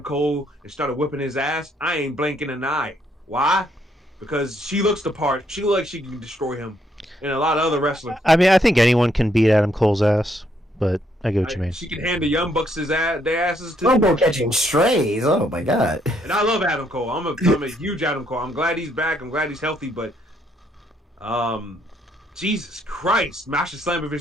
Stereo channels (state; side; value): normal; both; correlation 0.72